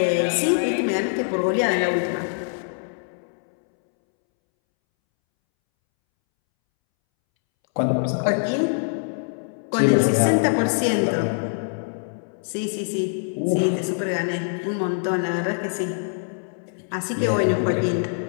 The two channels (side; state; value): right; silent; 63 dB below the other